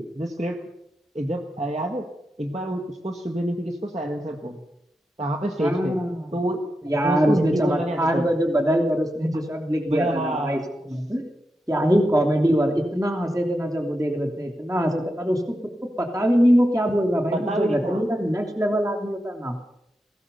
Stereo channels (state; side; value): normal; both; correlation 0.88